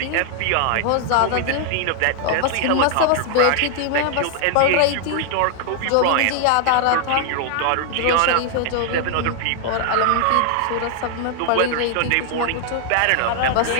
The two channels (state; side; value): different; both; correlation 0.00